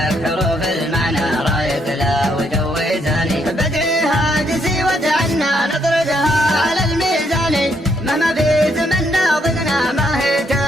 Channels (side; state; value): both; normal; correlation 0.74